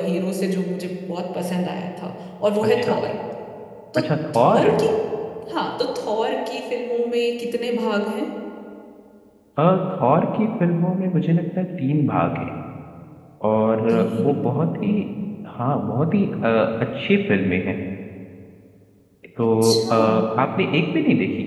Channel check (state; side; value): identical; both; correlation 1.00